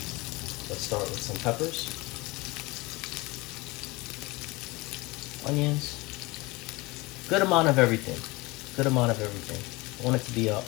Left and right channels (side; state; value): right; quieter; 23.4 dB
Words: Let's start with some peppers, onions, good amount of everything. Good amount of everything. I want it to be a